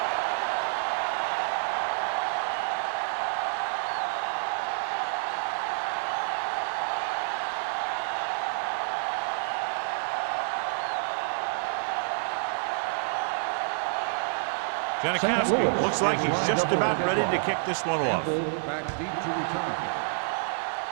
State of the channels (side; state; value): left; silent; digital silence